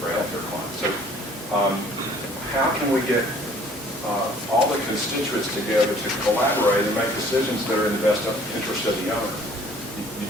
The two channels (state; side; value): normal; both; correlation 0.55